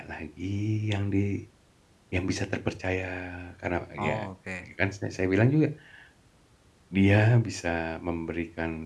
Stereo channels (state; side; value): identical; both; correlation 1.00